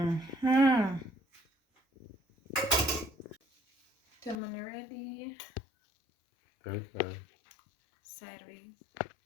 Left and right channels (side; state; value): right; drops out; at 4.4 s